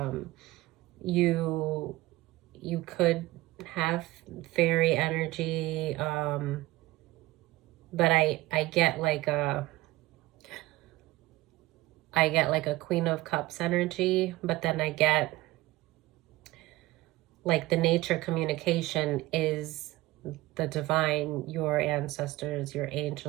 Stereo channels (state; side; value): quieter; left; 18.8 dB